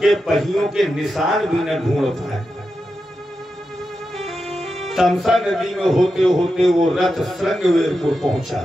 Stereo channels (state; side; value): normal; both; correlation 0.89